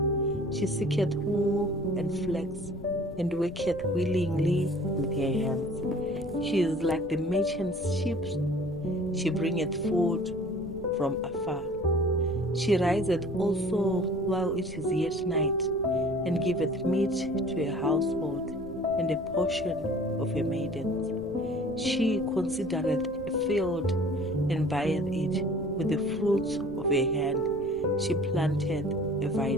She seeketh wool and flax, and worketh willingly with her hands. She is like the merchant's ship. She bringeth food from afar. She riseth also while it is yet night, and giveth meat to her household, and a portion of her maidens. She considereth a field, and buyeth it. With the fruits of her hand she planteth a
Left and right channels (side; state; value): left; noise; rumble, 17 dB below the sound